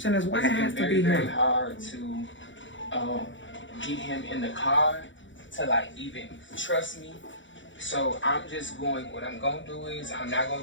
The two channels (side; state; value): right; late; 0.55 ms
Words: is, why it has to very, be very him? hard to get him in the car to like even trust me. So I'm just going. What I'm gonna do is I'm not gonna